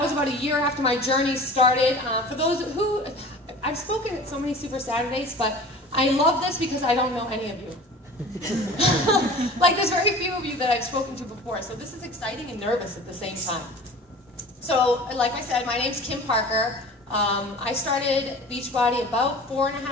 was about a year after my journey started. For those who, I've spoken at so many Super Saturdays, but I love this because I don't know any of you. Like there's very few of you that I've spoken to before, so this is exciting and nervous at the same time. So, like I said, my name's Kim Parker. I started Beachbody about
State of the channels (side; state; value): both; normal; correlation 0.40